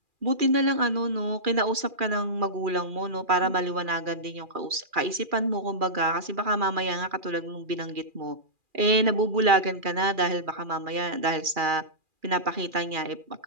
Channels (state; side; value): late; left; 2.4 ms